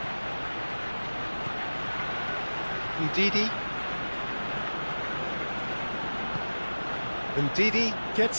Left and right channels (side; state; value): both; inverted; correlation -1.00